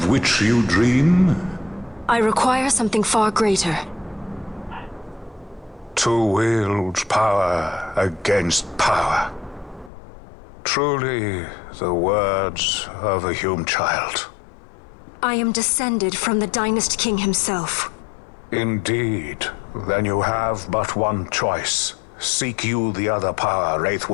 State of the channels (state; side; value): drops out; right; at 9.9 s